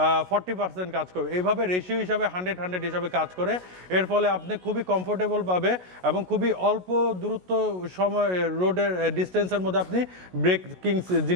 40% কাজ করবে। এইভাবে রেশিও হিসাবে 100 হিসাবে কাজ করে। এর ফলে আপনি খুবই কমফোর্টেবল পাবে এবং খুবই অল্প দূরত্ব সময় রোডের ডিস্টেন্সের মধ্যে আপনি ব্রেকিং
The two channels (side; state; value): left; late; 16 ms